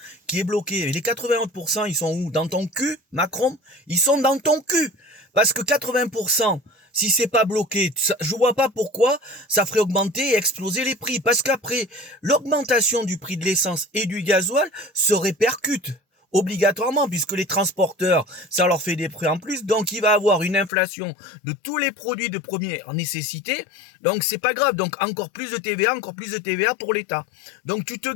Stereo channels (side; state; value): right; drops out; at 20.7 s